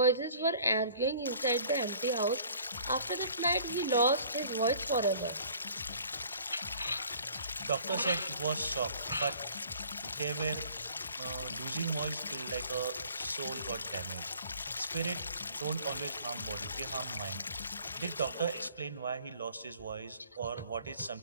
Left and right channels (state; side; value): inverted; both; correlation -0.54